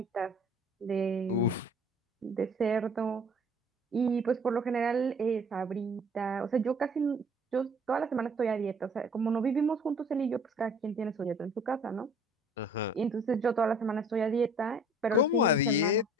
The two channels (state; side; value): normal; both; correlation 0.52